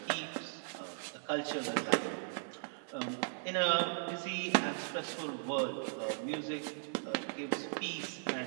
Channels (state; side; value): silent; left; digital silence